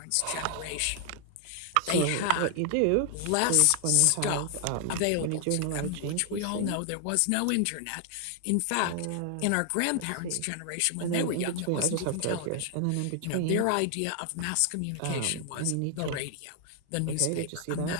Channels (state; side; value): different; both; correlation 0.00